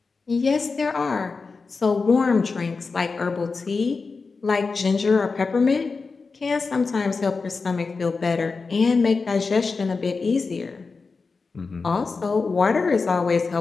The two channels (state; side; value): quieter; right; 4.4 dB